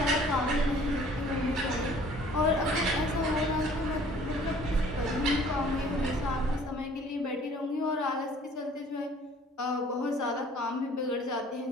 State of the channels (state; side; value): normal; both; correlation 0.53